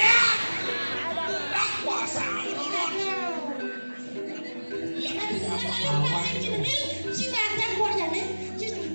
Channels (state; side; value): inverted; both; correlation -1.00